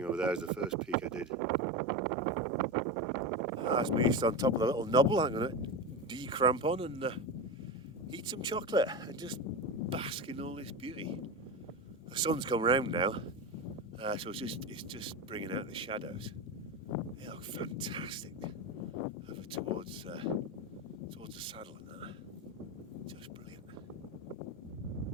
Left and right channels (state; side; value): normal; both; correlation 0.21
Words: over there is the first peak I did. That's me on top of the little knobble. I'm going to de-cramp on and eat some chocolate and just bask in all this beauty. The sun's come round now, so it's just bringing out the shadows. They look fantastic over towards the saddle and that. Just brilliant.